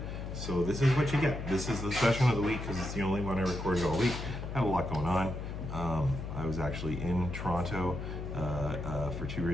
So this is what you get. This is the session of the week because it's the only one I recorded all week. I had a lot going on. I was actually in Toronto for 2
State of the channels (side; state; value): left; noise; hum, 6 dB below the sound